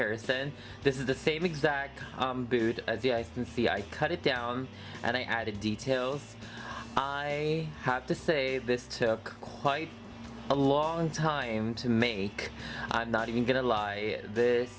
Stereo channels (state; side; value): identical; both; correlation 1.00